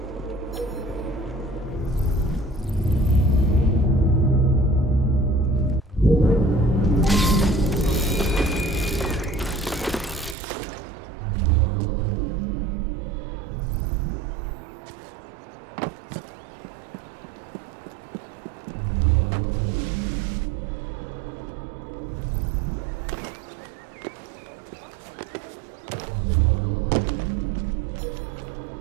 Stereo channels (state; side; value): drops out; left; at 10.4 s